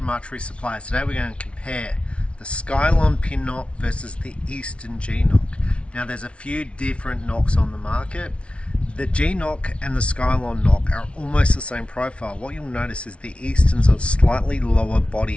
Archery Supplies. Today we're going to compare the Skylon Pin knock versus the Easton G knock. Now there's a few different knocks on the market. The G knock and the Skylon knock are almost the same profile. What you'll notice is the Easton's a slightly lower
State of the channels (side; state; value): right; late; 0.060 ms